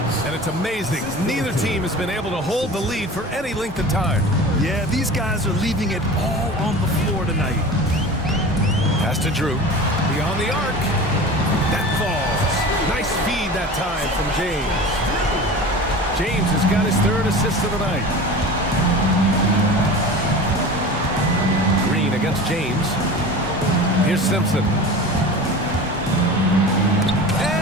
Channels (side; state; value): both; normal; correlation 0.35